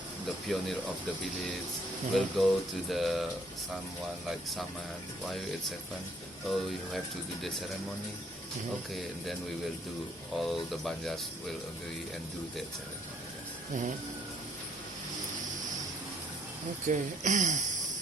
the pioneer of the village, will go to the someone like Saman. Why it's happened? Oh, you have to do the ceremony. Okay, and then we will do. All the Banjars will agree and do that ceremony. Mhm. Okay.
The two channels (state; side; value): normal; both; correlation 0.64